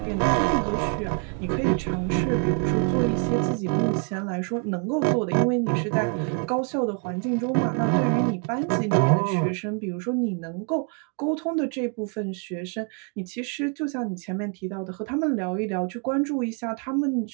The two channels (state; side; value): quieter; left; 39.6 dB